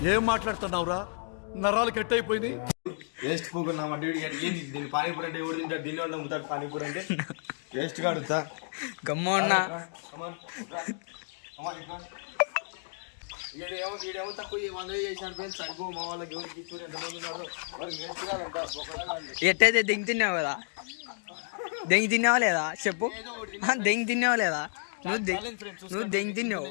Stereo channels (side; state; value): right; silent; digital silence